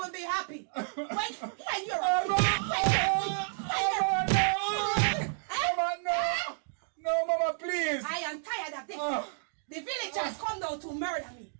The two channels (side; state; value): left; silent; digital silence